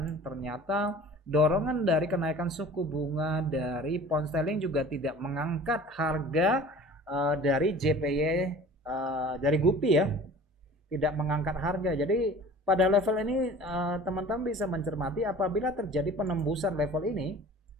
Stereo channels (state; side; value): normal; both; correlation 0.44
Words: Ternyata dorongan dari kenaikan suku bunga dari pound sterling juga tidak mengangkat harga dari JPY dari GBP ya, tidak mengangkat harga. Jadi pada level ini teman-teman bisa mencermati apabila terjadi penembusan level ini.